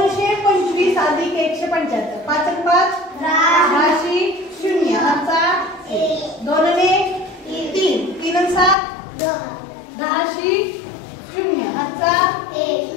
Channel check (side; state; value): right; drops out; at 8.8 s